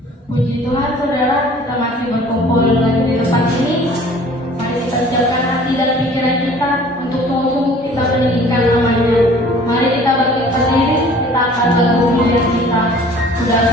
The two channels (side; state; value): both; normal; correlation 0.50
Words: Puji Tuhan saudara, kita masih berkumpul lagi di tempat ini. Mari kita siapkan hati dan pikiran kita untuk sungguh-sungguh kita meninggikan namanya. Mari kita berdiri, kita akan bergumul yang kita sudah